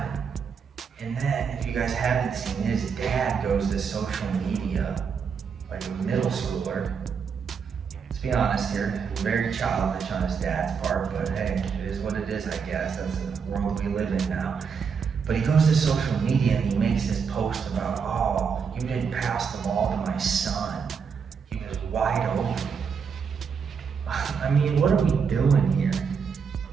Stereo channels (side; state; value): left; quieter; 6.2 dB